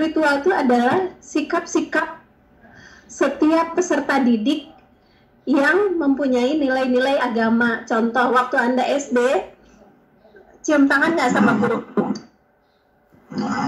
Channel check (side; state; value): both; identical; correlation 1.00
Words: itu adalah sikap-sikap setiap peserta didik yang mempunyai nilai-nilai agama. Contoh, waktu Anda SD, cium tangan nggak sama guru?